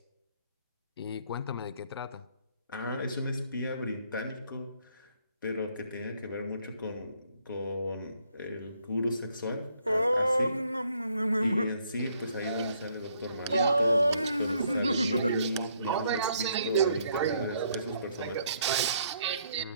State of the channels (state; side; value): inverted; both; correlation -0.69